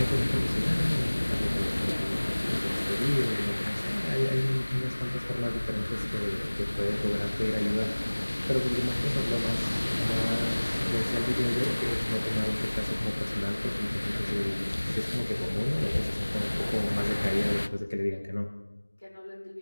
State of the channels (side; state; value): both; inverted; correlation -1.00